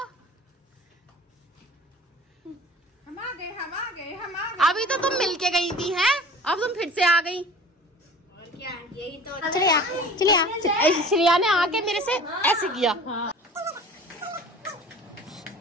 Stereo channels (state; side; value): normal; both; correlation 0.42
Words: हम आ गए। अभी तो तुम मिलके गई थी हैं, अब तुम फिर से आ गई। और क्या, यही तो। चलिए श्रेया ने आके मेरे से ऐसे किया।